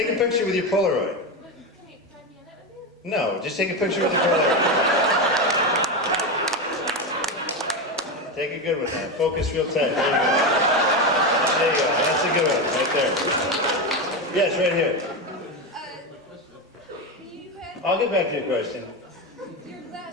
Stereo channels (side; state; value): both; normal; correlation 0.15